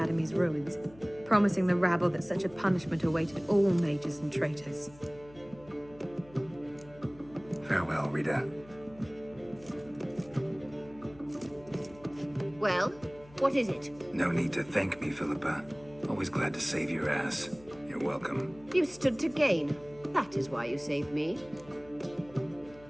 ruins, promising the rabble that such a punishment awaited all mages and traitors. Farewell, Rita. Well, what is it? No need to thank me, Philippa. Always glad to save your ass. You're welcome. You stood to gain. That is why you saved me.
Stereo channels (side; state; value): left; noise; hum, 22 dB below the sound